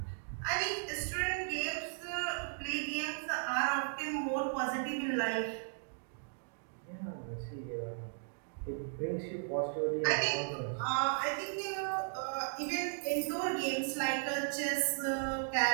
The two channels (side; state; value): left; silent; digital silence